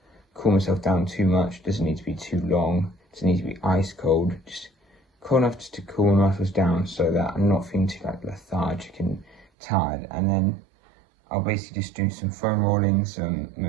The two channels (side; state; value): left; drops out; at 9.5 s